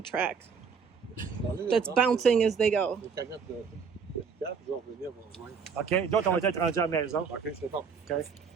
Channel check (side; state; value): left; quieter; 6.0 dB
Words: track that's bouncing as they go. OK, d'autres on va être rendus à la maison. OK, c'est bon. OK.